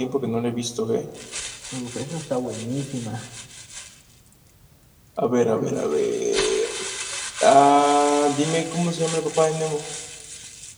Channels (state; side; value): identical; both; correlation 1.00